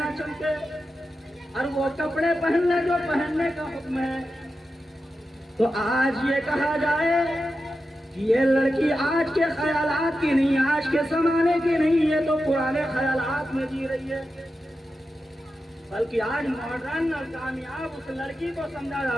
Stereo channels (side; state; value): both; normal; correlation 0.90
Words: چمکے، اور وہ کپڑے پہن لے جو پہننے کا حکم ہے، تو آج یہ کہا جائے کہ یہ لڑکی آج کے خیالات کی نہیں، آج کے زمانے کی نہیں، یہ تو پرانے خیالات میں جی رہی ہے. بلکہ آج ماڈرن اور کامیاب اس لڑکی کو سمجھا